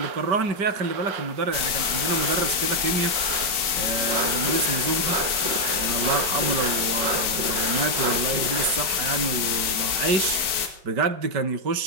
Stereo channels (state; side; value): late; left; 4.5 ms